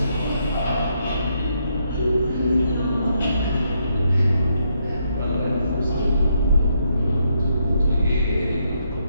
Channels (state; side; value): inverted; both; correlation -0.77